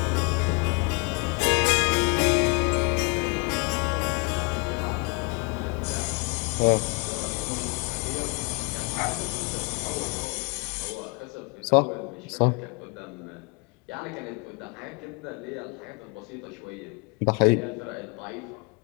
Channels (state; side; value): quieter; right; 30.4 dB